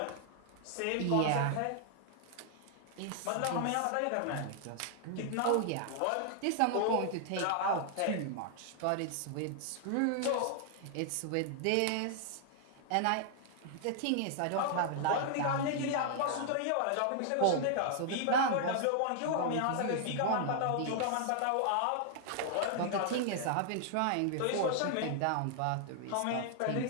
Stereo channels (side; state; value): both; different; correlation 0.00